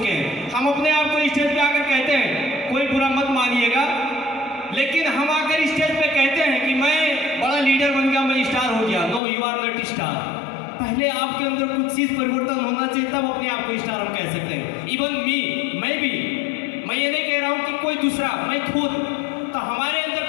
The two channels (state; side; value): drops out; right; at 9.2 s